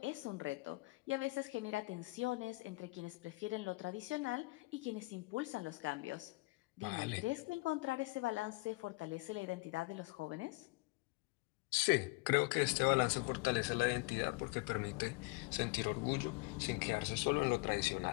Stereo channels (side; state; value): right; quieter; 25.5 dB